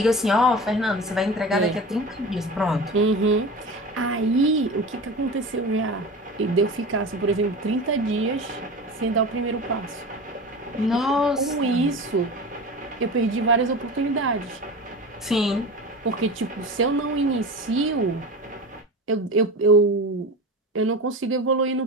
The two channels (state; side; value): normal; both; correlation 0.30